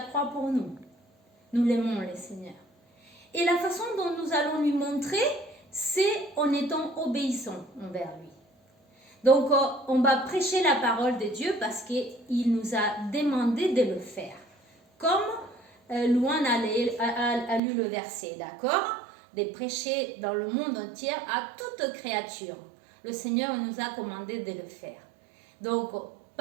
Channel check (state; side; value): drops out; left; at 17.6 s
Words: croix pour nous. Nous l'aimons, le Seigneur. Et la façon dont nous allons lui montrer, c'est en étant obéissants envers lui. Donc, on va prêcher la parole de Dieu parce qu'il nous a demandé de le faire. Comme Louane a lu le verset, d'accord? De prêcher dans le monde entier à toute créature. Le Seigneur nous a commandé de le faire. Donc,